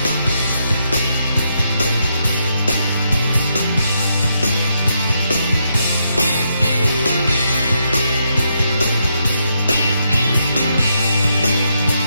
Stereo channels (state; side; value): inverted; both; correlation -0.79